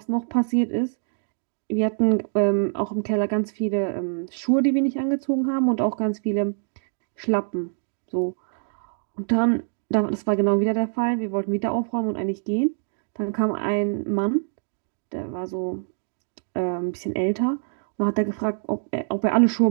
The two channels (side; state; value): left; silent; digital silence